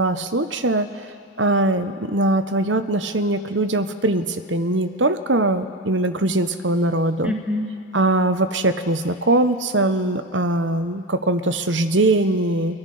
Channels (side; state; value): both; normal; correlation 0.19